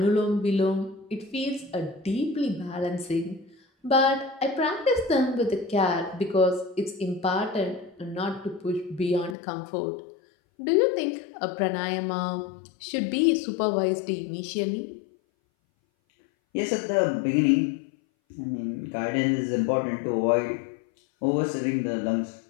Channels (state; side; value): drops out; right; at 9.3 s